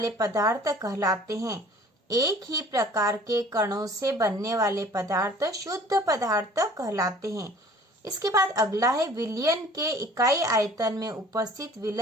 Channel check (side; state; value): both; normal; correlation 0.50